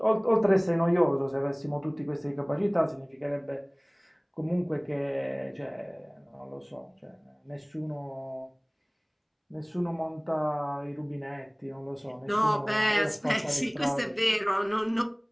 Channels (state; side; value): identical; both; correlation 1.00